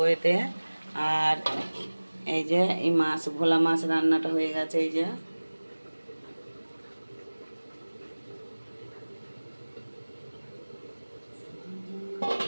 এতে। আর এই যে এই মাছ, ভোলা মাছ রান্নাটা হয়ে গেছে। এই যে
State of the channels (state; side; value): inverted; both; correlation -1.00